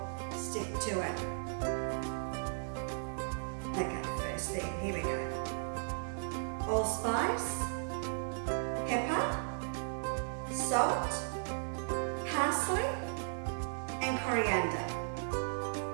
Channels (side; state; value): left; silent; 54 dB below the other